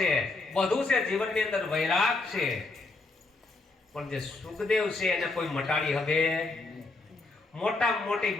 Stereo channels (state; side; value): quieter; right; 3.4 dB